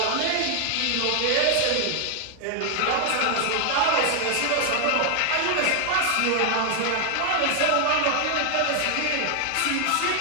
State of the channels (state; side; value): different; both; correlation 0.00